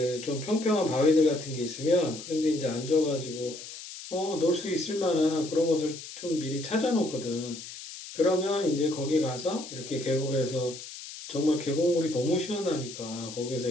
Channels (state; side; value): noise; left; hiss, 12 dB below the sound